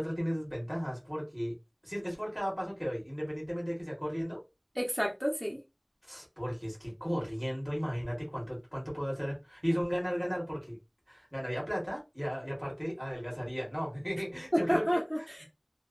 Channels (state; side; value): identical; both; correlation 1.00